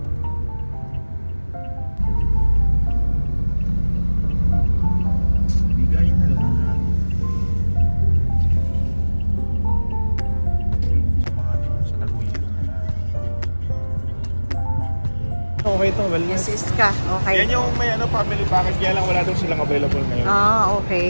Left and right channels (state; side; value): inverted; both; correlation -1.00